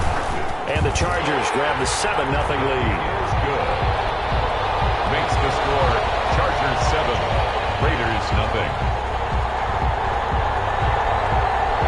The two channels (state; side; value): identical; both; correlation 1.00